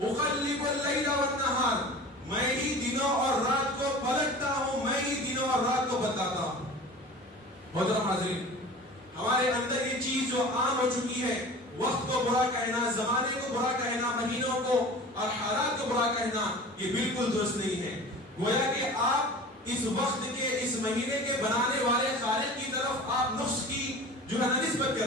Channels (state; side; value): normal; both; correlation 0.39